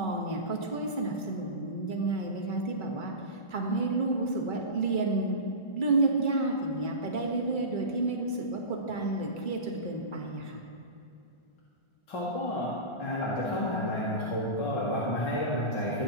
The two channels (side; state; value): right; late; 1.4 ms